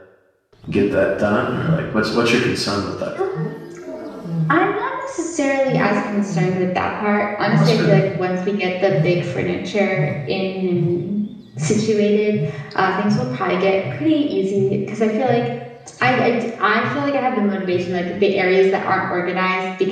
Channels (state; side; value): identical; both; correlation 1.00